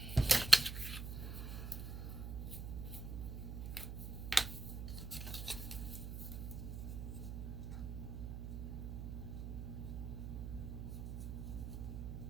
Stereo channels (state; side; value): noise; right; hum, 5 dB below the sound